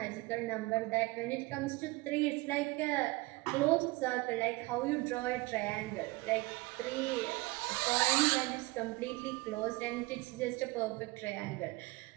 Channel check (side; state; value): left; quieter; 22.7 dB